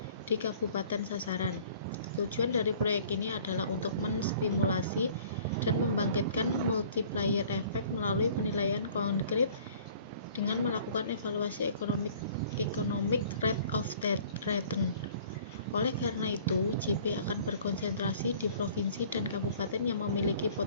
di kabupaten sasaran. Tujuan dari proyek ini adalah untuk menstimulasi dan membangkitkan multiplier effect melalui penilaian konkret dengan melakukan evaluasi economic rate of return. Oleh karena itu, GP akan berkonsentrasi di provinsi dan kabupaten yang memiliki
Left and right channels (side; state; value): both; inverted; correlation -0.52